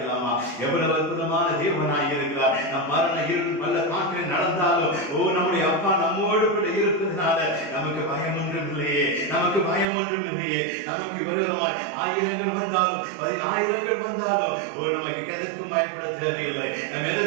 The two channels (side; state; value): left; drops out; at 9.9 s